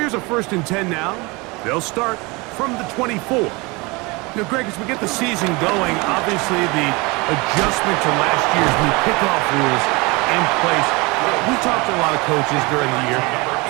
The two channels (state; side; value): quieter; left; 25.8 dB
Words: a 1st and 10 now. They'll start from the 24. Now, Greg, as we get the season going, obviously the adjustment to last year's new kickoff rules in place. We talked to a lot of coaches during the year.